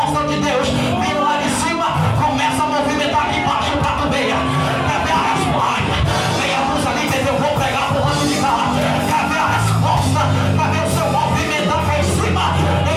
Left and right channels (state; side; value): identical; both; correlation 1.00